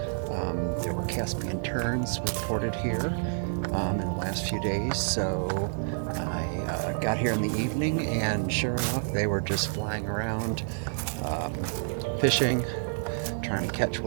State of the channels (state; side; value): silent; left; digital silence